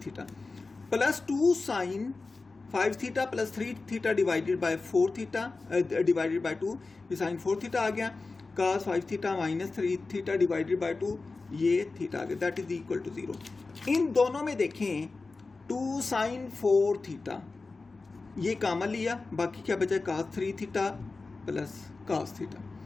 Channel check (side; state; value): right; quieter; 3.8 dB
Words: theta plus 2 sine 5 theta plus 3 theta divided by 4 theta divided by 2, ये साइन 4 थीटा आ गया, cos 5 theta minus 3 theta divided by 2, ये थीटा आ गया, दैट इज इक्वल टू 0। इन दोनों में देखें 2 साइन 4 थीटा ये कॉमन लिया, बाकी क्या बचा, cos 3 theta plus cos theta,